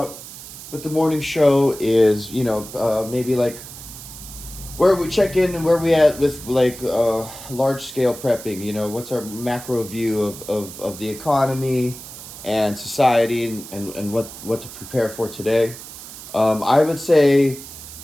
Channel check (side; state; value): right; noise; hiss, 14 dB below the sound